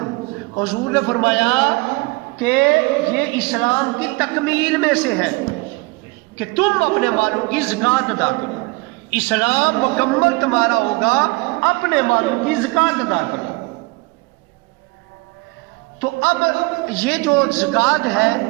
حضور نے فرمایا کہ یہ اسلام کی تکمیل میں سے ہے کہ تم اپنے مالوں کی زکوٰۃ ادا کرو۔ اسلام مکمل تمہارا ہوگا، اپنے مالوں کی زکوٰۃ ادا کرو۔ تو اب یہ جو زکوٰۃ ہے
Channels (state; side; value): quieter; left; 24.8 dB